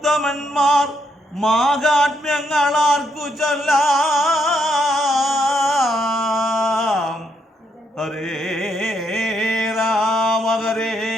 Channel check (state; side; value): normal; both; correlation 0.76